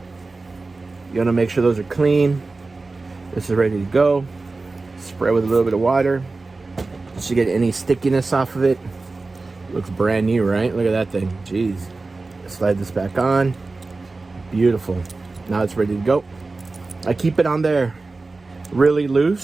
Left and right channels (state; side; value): quieter; left; 3.6 dB